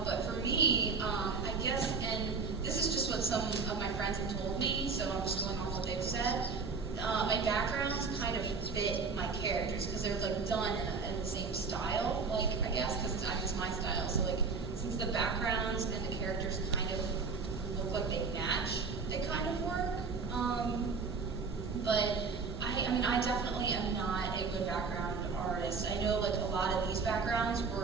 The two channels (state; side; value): quieter; left; 4.8 dB